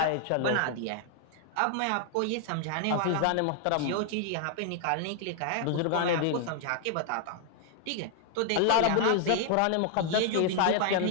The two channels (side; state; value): both; different; correlation 0.00